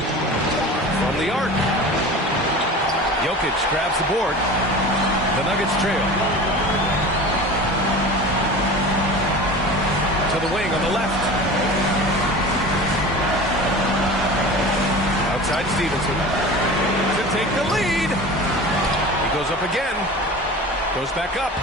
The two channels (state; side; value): normal; both; correlation 0.35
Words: From the arc. Jokic grabs the board. The Nuggets trail. To the wing on the left. Outside Stevenson. To take the lead. He goes up again. Goes back up.